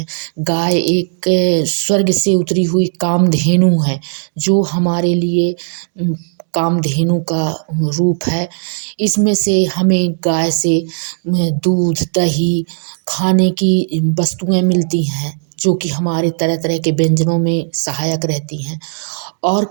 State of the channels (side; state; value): left; silent; digital silence